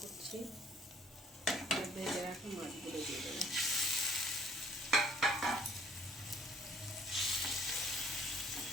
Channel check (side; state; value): both; normal; correlation 0.58